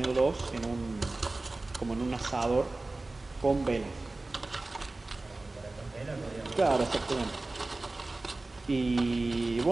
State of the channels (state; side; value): quieter; left; 3.1 dB